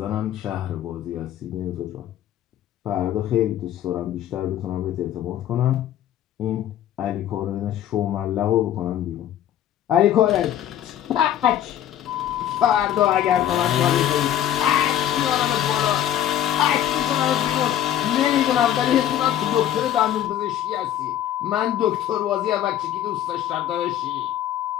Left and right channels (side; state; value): right; quieter; 11.4 dB